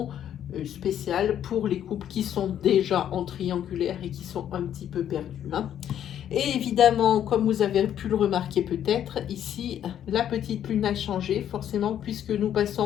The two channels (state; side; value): quieter; right; 10.2 dB